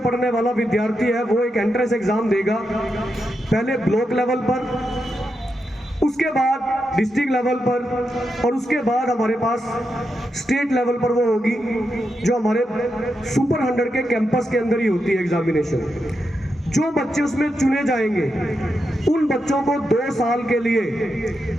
पढ़ने वाला विद्यार्थी है वो एक एंट्रेंस एग्जाम देगा, पहले ब्लॉक लेवल पर, उसके बाद डिस्ट्रिक्ट लेवल पर और उसके बाद हमारे पास स्टेट लेवल पर वो होगी जो हमारे सुपर 100 के कैंपस के अंदर ही होती है एग्जामिनेशन। जो बच्चे उसमें चुने जाएंगे उन बच्चों को 2 साल के लिए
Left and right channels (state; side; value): normal; both; correlation 0.85